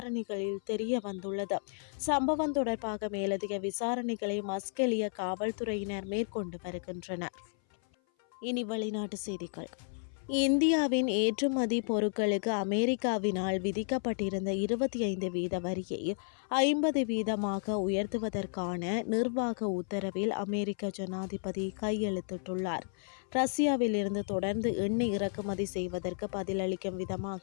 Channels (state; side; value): silent; right; 56 dB below the other